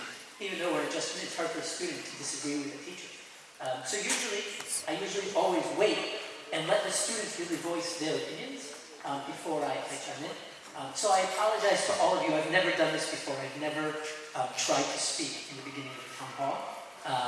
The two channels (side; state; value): both; identical; correlation 1.00